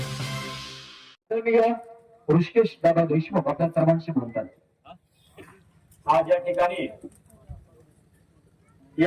9. Rishikesh दादा देशमुख आपल्या सर्वांशी बोलतात. आज या ठिकाणी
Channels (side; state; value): both; identical; correlation 1.00